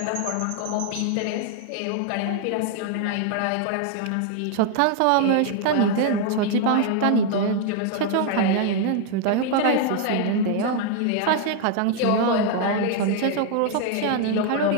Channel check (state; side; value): different; both; correlation 0.00